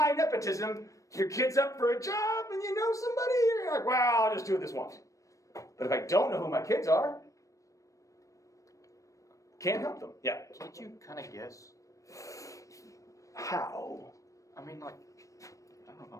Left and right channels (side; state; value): right; late; 0.16 ms